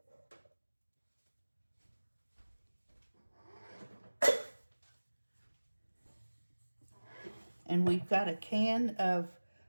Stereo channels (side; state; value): both; inverted; correlation -1.00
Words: And we've got a can of